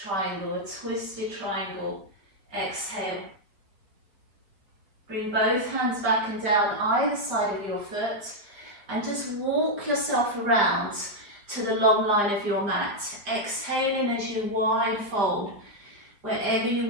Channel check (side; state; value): left; late; 4.9 ms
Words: triangle, a twisted triangle. Exhale. Bring both hands back and down either side of your foot and just walk yourself around to the long line of your mat. Exhaling as you wide fold, wherever you